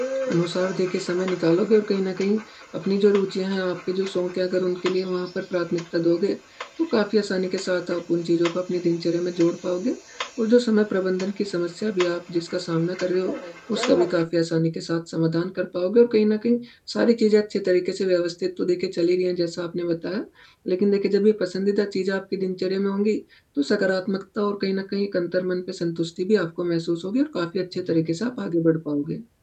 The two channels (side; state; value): both; identical; correlation 1.00